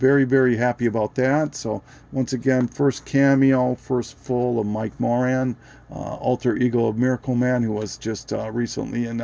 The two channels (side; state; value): both; identical; correlation 1.00